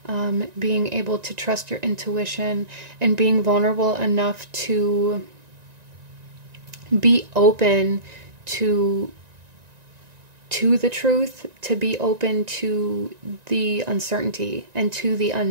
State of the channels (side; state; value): left; late; 1.9 ms